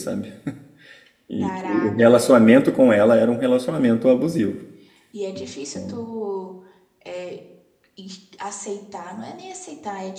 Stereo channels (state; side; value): identical; both; correlation 1.00